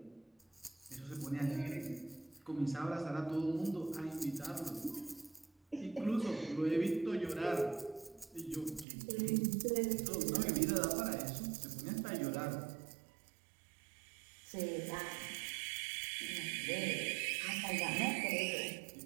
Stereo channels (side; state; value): left; drops out; at 8.8 s